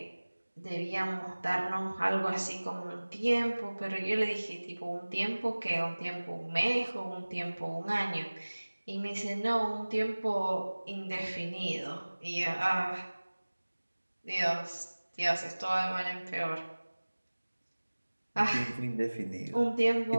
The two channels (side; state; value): both; inverted; correlation -1.00